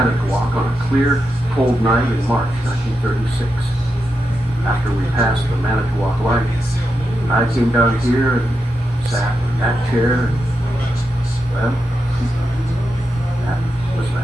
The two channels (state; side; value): normal; both; correlation 0.87